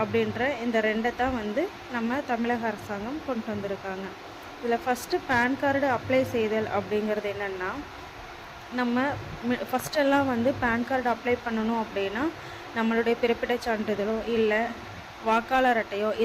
அப்படின்ற இந்த 2 தான் நம்ம தமிழக அரசாங்கம் கொண்டு வந்திருக்காங்க. இதில் ஃபஸ்ட்டு பேன் கார்டு அப்ளை செய்தல் அப்படிங்கிறது என்னென்னா, நம்ம ஃபஸ்ட்டெல்லாம் பேன் கார்டு அப்ளை பண்ணணும் அப்படின்னா நம்மளுடைய பிறப்பிடச் சான்றிதழோ இல்லை வாக்காளர் அட்டையோ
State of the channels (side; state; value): both; identical; correlation 1.00